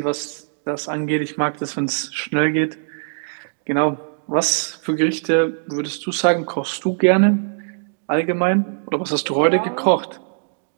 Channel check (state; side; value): silent; left; 65 dB below the other